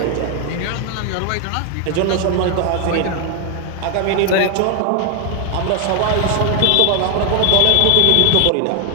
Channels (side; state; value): both; different; correlation 0.01